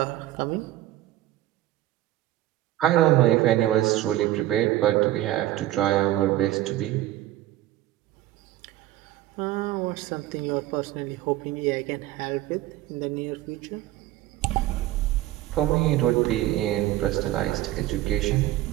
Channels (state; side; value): quieter; left; 14.8 dB